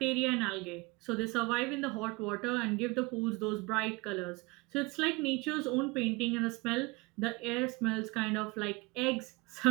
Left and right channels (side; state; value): left; quieter; 25.2 dB